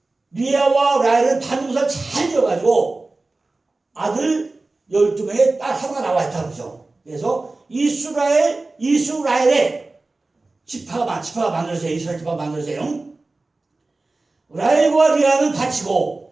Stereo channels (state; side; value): quieter; left; 3.3 dB